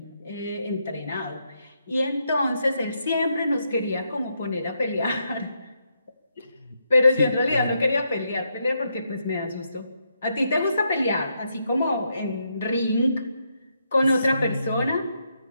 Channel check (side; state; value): both; inverted; correlation -0.79